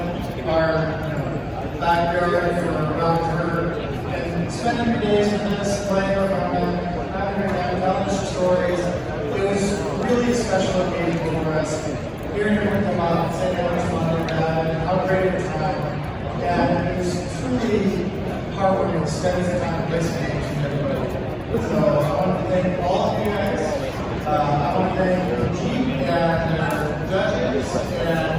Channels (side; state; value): both; identical; correlation 1.00